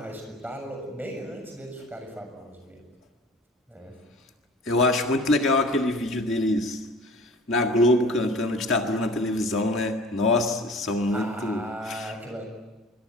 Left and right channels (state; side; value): normal; both; correlation 0.43